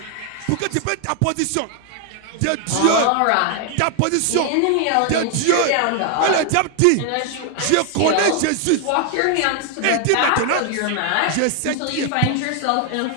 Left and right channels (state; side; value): different; both; correlation 0.00